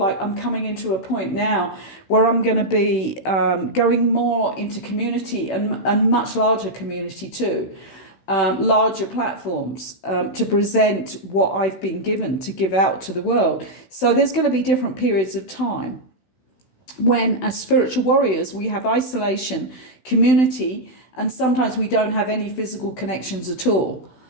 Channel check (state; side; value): late; right; 16 ms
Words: I'm coming into a point now where I'm going to be going more into community, and much larger community too, larger platforms to present what I've been given to give out to the world. So there's going to be different periods of time when, as spiritual warriors, we have isolation, community, and sometimes we don't have any physical connections at all,